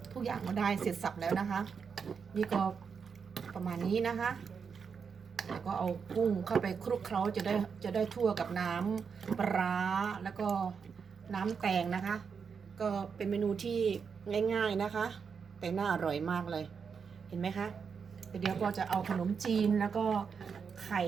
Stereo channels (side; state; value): left; quieter; 6.1 dB